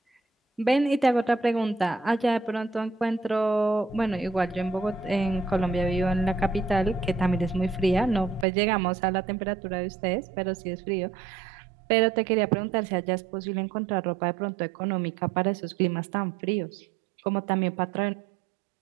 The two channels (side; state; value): left; drops out; at 8.5 s